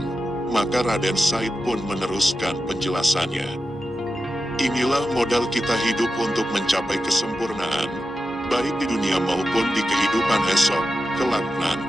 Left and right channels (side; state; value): both; normal; correlation 0.91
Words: maka Raden Said pun meneruskan penjelasannya. Inilah modal kita hidup untuk mencapai kesempurnaan, baik di dunia maupun di kehidupan esok, kelak